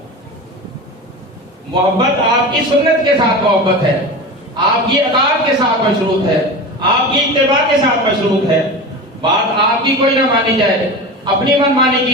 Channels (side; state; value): both; normal; correlation 0.28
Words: محبت آپ کی سنت کے ساتھ محبت ہے، آپ کی اطاعت کے ساتھ مشروط ہے، آپ کی اتباع کے ساتھ مشروط ہے. بات آپ کی کوئی نہ مانی جائے، اپنی من مانی